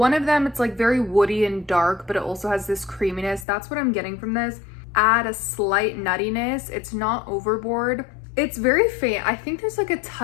of them, it's like very woody and dark, but it also has this creaminess. That's what I'm getting from this. Add a slight nuttiness. It's not overboard. It's very faint. I think there's like a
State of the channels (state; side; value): drops out; right; at 3.5 s